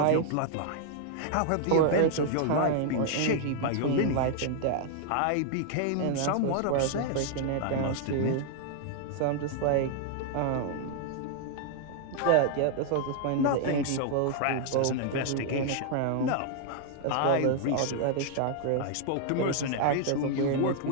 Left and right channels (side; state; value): both; different; correlation 0.00